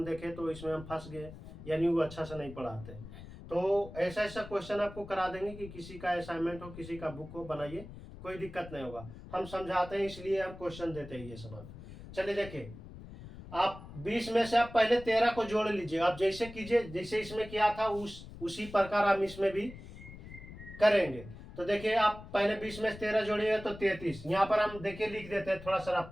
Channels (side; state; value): left; noise; rumble, 14 dB below the sound